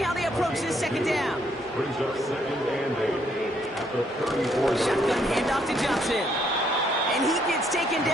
how they approach this 2nd down. Brings up 2nd and 8 at the 34. Shotgun handoff to Johnson. And he gets taken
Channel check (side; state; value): both; normal; correlation 0.70